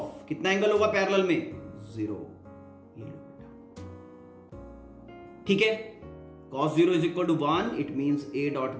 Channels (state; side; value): identical; both; correlation 1.00